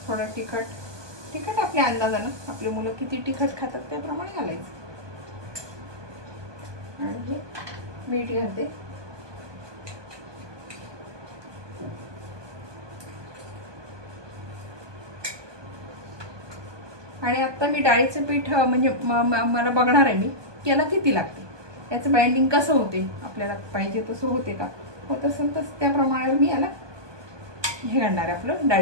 थोडं तिखट आपल्या अंदाजानं, आपली मुलं किती तिखट खातात त्याप्रमाणे घालायचं. आणि हे मीठ घालते. आणि आता मी डाळीचं पीठ म्हणजे मला बघणार आहे मी की याला किती लागते, याचं बाइंडिंग कसं होते, आपल्याला पाहिजे तसं होते का, होत असेल तर त्याप्रमाणे मी याला हे घालणार आहे, आपलं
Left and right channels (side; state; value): left; late; 1.2 ms